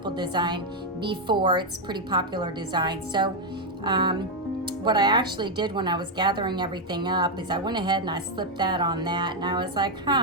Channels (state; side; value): normal; both; correlation 0.02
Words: design before. It's a pretty popular design. So what I actually did when I was gathering everything up is I went ahead and I slipped that on that, and I was like,